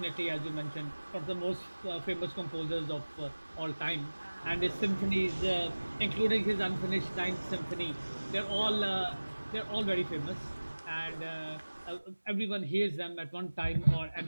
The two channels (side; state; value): both; inverted; correlation -1.00